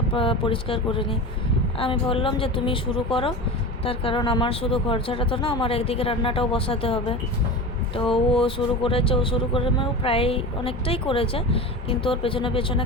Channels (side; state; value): both; normal; correlation 0.29